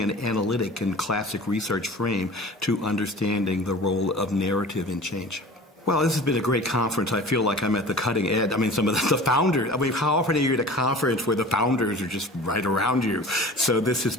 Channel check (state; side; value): normal; both; correlation 0.40